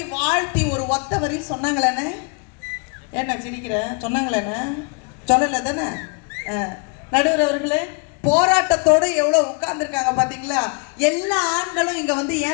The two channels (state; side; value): quieter; right; 35.0 dB